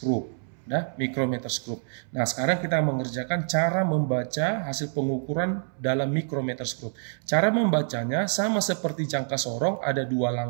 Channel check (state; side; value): silent; left; 60 dB below the other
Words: Nah, micrometer screw. Nah, sekarang kita mengerjakan cara membaca hasil pengukuran dalam micrometer screw. Cara membacanya sama seperti jangka sorong, ada dua